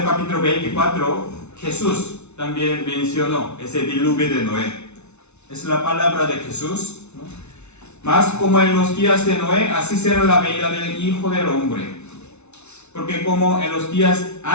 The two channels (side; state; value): right; late; 0.81 ms